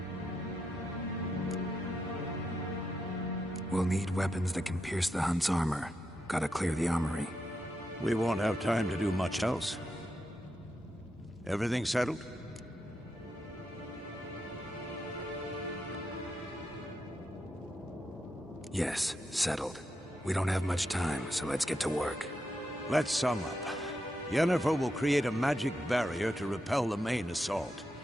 We'll need weapons that can pierce the Hunt's armor. Gotta clear the armory. We won't have time to do much else. Everything settled? Yes, settled. We don't have much time, so let's get to work. Let's sum up. Yennefer will create a magic barrier to repel the main assault.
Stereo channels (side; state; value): both; normal; correlation 0.85